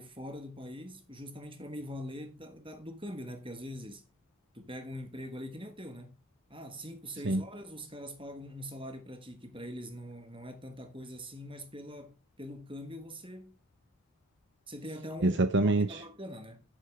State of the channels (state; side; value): normal; both; correlation 0.52